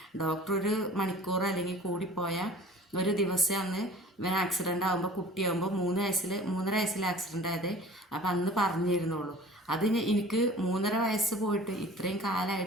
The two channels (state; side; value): normal; both; correlation 0.44